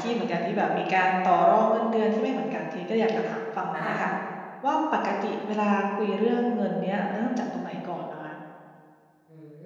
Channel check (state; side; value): identical; both; correlation 1.00